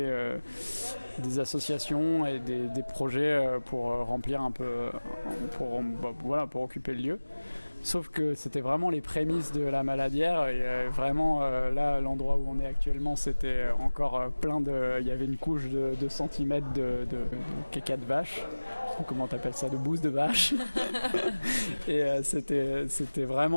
associations et des projets pour remplir un peu, pour occuper le lieu. Sauf que c'était vraiment les prémices de la Maladière et vraiment là, l'endroit où on est actuellement, c'était encore il y avait une couche de 2 centimètres de caca de vache. Comment t'appelles ça, de bouse de vache. Et c'était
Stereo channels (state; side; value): inverted; both; correlation -1.00